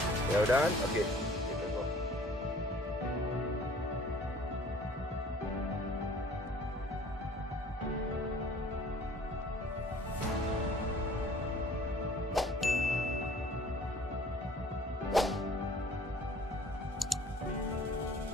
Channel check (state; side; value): normal; both; correlation 0.52